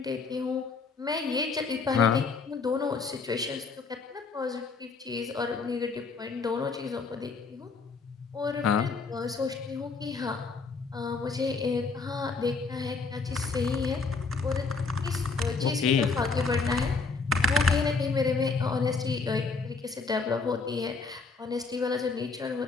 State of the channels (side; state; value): right; quieter; 4.4 dB